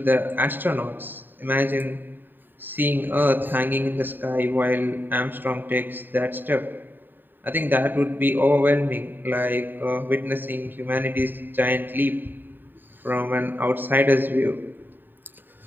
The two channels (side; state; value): left; late; 0.092 ms